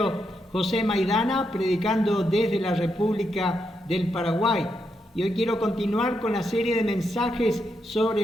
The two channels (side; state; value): both; normal; correlation 0.82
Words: José Maidana, predicando desde la República del Paraguay. Y hoy quiero continuar con la serie de mensajes